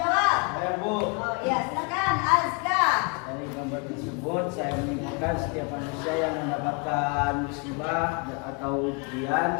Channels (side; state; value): right; quieter; 33.3 dB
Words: Saya Bu, Oh iya, silakan Azka. dari gambar tersebut saya menyimpulkan setiap manusia yang mendapatkan musibah atau ujian,